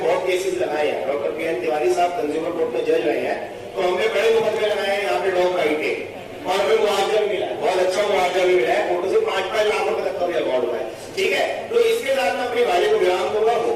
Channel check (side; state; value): both; identical; correlation 1.00